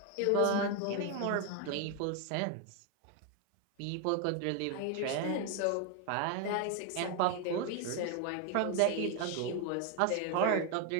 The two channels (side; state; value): both; different; correlation 0.01